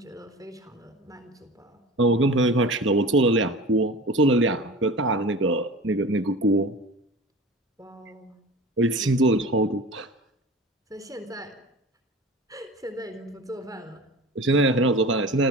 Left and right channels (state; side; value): normal; both; correlation 0.36